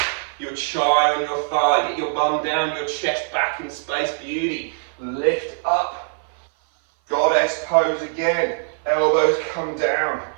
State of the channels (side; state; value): left; silent; 57 dB below the other